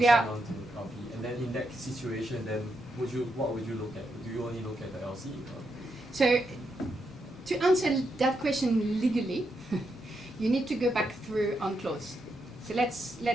are on to LP, and then in that situation, then what would you look at? Do you only look at the LC? Or? So to answer that question legally, you need to go back through UNCLOS. So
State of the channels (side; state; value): both; normal; correlation 0.82